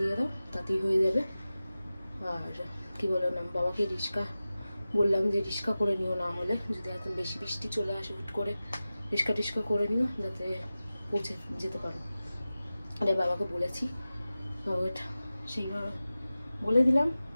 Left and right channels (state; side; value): inverted; both; correlation -0.95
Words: দাও, তাতেই হয়ে যাবে। আর কি বলো না, বাবাকে রিক্সা বললাম যে রিক্সা করে নিও, না হলে যদি এত বেশি বৃষ্টি চলে আসে হুট করে রিক্সা করে নিও, যাতে পৌঁছে যেতে পারো। আরে বাবাকে বলেছি, বাবাটা সেইভাবে বলে দিলাম।